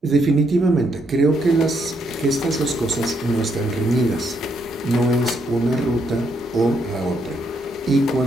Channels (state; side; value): normal; both; correlation 0.75